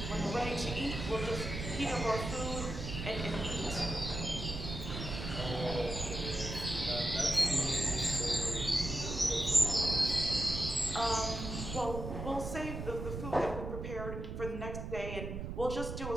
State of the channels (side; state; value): right; noise; rumble, 6 dB below the sound